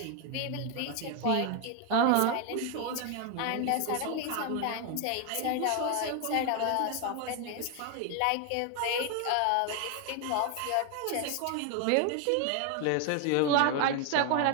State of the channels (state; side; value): different; both; correlation 0.01